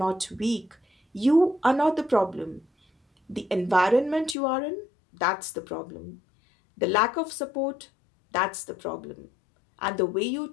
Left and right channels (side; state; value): right; drops out; at 4.4 s